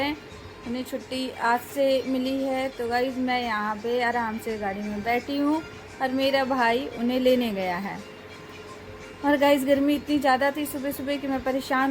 उन्हें छुट्टी आज से मिली है। तो गाइस मैं यहाँ पे आराम से गाड़ी में बैठी हूँ और मेरा भाई उन्हें लेने गया है। और गाइस गर्मी इतनी ज़्यादा थी सुबह सुबह कि मैं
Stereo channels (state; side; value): identical; both; correlation 1.00